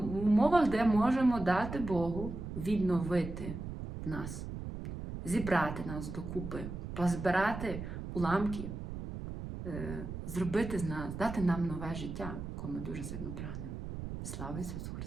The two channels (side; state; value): right; noise; rumble, 7 dB below the sound